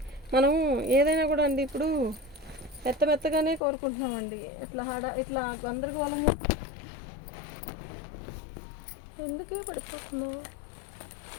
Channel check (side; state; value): right; drops out; at 3.6 s